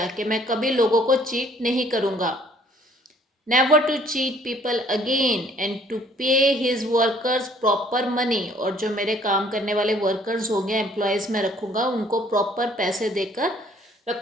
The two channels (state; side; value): normal; both; correlation 0.59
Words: कि मैं कभी लोगों को चीट नहीं करूंगा. Never to cheat people again and to pay his workers proper money. और जो मेरे काम करने वाले वर्कर्स होंगे, एम्प्लॉयज में रखूंगा, उनको प्रॉपर पैसे देकर